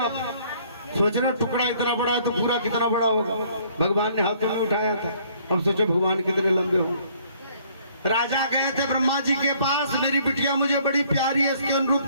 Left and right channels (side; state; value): both; inverted; correlation -0.61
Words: सोच रहे हो टुकड़ा इतना बड़ा है तो पूरा कितना बड़ा होगा। भगवान ने हाथों में उठाया था, अब सोचो भगवान कितने लंबे होंगे। राजा गए थे ब्रह्मा जी के पास, मेरी बिटिया मुझे बड़ी प्यारी है, इसके अनुरूप